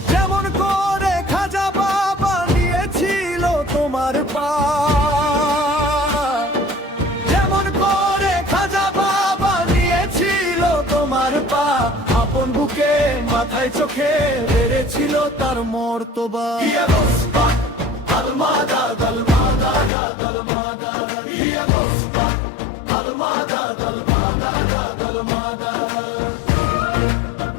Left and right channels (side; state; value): right; drops out; at 19.9 s